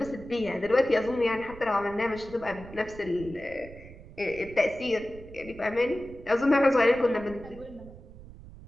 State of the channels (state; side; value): noise; right; rumble, 17 dB below the sound